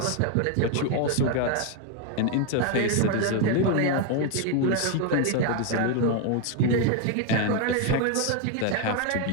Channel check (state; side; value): different; both; correlation 0.01